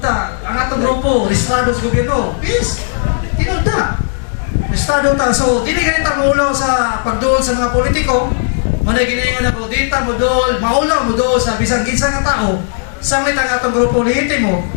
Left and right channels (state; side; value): silent; right; 70 dB below the other